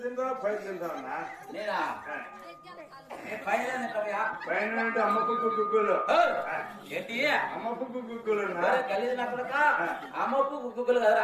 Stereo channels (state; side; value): identical; both; correlation 1.00